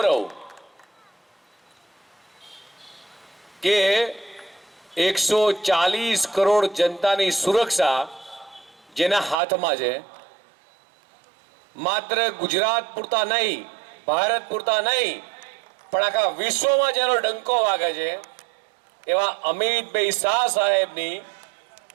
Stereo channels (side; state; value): left; drops out; at 9.3 s